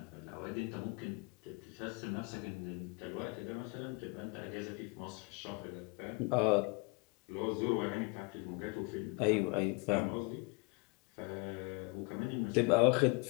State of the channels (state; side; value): quieter; right; 29.1 dB